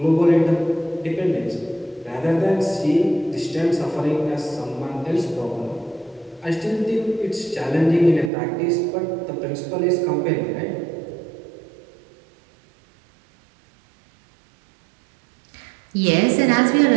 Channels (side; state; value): left; drops out; at 8.3 s